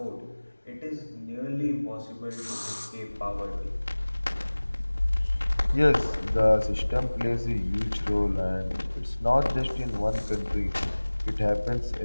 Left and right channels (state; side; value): inverted; both; correlation -1.00